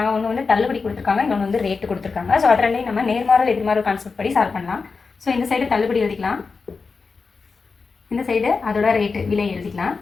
ஒன்று வந்து தள்ளுபடி கொடுத்துருக்காங்க, இன்னொன்று வந்து ரேட்டு கொடுத்துருக்காங்க. ஸோ அது ரெண்டையும் நம்ம நேர்மாறல் எதிர்மாறல் கான்செப்ட் படி சால்வ் பண்ணலாம். ஸோ இந்த சைடு தள்ளுபடி எழுதிக்கலாம், இந்த சைடு அதோட ரேட்டு விலை எழுதிக்கலாம்.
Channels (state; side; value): quieter; right; 4.6 dB